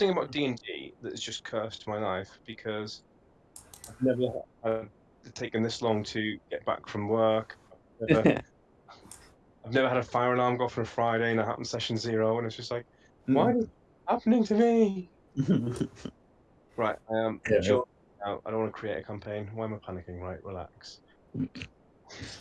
about D&D that has just cursed my life because I've never had taken this long to get back from work. I've never had a fire alarm go off on a Friday and it happened session 0, and it's just like, why is it happening to me? Right, I am just out. I don't want to create a campaign. Why am I panicking? Right, relax.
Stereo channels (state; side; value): identical; both; correlation 1.00